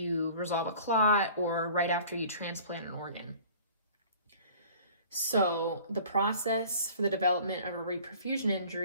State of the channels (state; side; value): inverted; both; correlation -0.47